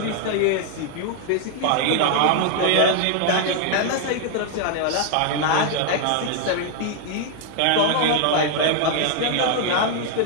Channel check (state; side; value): different; both; correlation 0.00